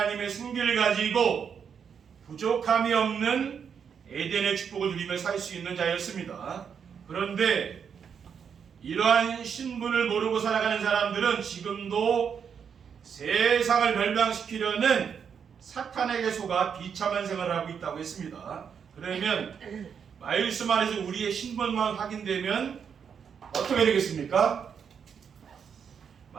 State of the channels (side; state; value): left; quieter; 7.1 dB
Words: 승기를 가지고 부족함이 없는 에덴의 축복을 누리며 살 수 있는 자였습니다. 그런데 이러한 신분을 모르고 살아가는 사람들은 지금도 세상을 멸망시키려는 사탄에게 속아 비참한 생활을 하고 있다고 했습니다. 그러면 말씀 안에서 우리의 신분만 확인되면 어떻게 되겠습니까?